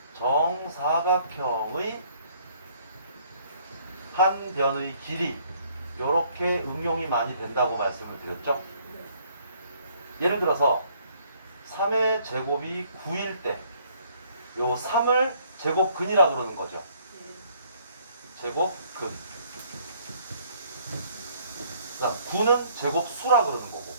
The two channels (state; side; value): inverted; both; correlation -0.62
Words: 정사각형의 한 변의 길이, 요렇게 응용이 많이 된다고 말씀을 드렸죠. 예를 들어서 3의 제곱이 9일 때 요 3을 제곱근이라 그러는 거죠. 제곱근. 그다음 9는 제곱수라 그러는 거고.